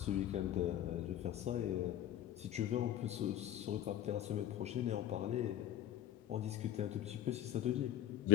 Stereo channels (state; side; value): quieter; right; 11.3 dB